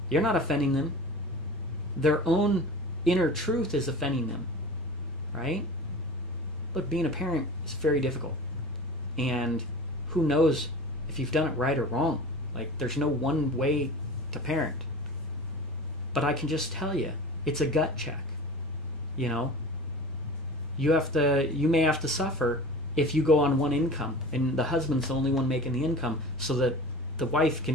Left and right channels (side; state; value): both; normal; correlation 0.37